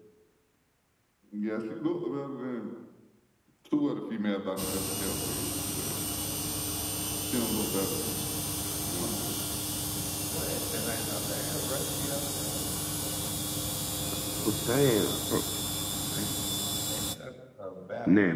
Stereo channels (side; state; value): both; identical; correlation 1.00